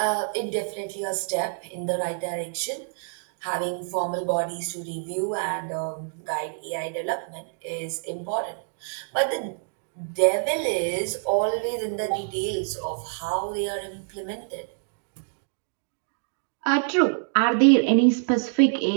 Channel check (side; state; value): left; silent; digital silence